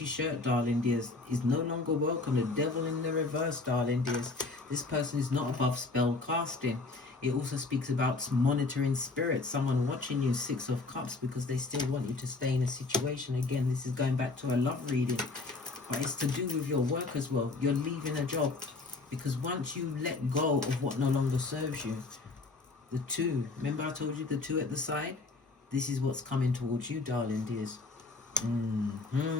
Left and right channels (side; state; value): right; quieter; 3.7 dB